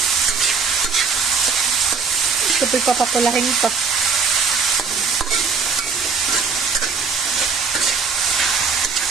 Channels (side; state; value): left; quieter; 5.3 dB